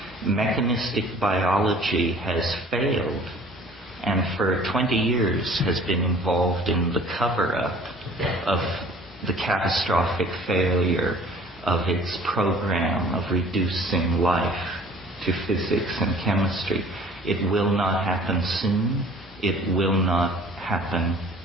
Mechanistic biology has failed, and for 20 years has been involved in the cover-up of the catastrophic failure of its program of reducing life to physics and chemistry. It will not happen soon. It will not happen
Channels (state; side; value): normal; both; correlation 0.50